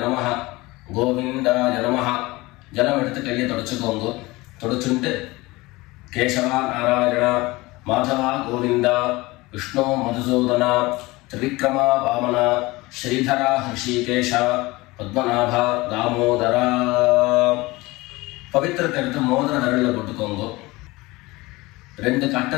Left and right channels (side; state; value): right; quieter; 21.4 dB